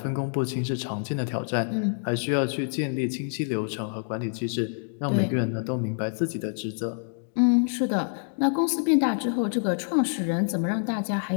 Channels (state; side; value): silent; right; digital silence